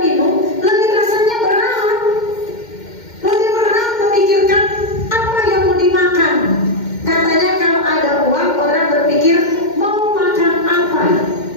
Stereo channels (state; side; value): late; right; 2.1 ms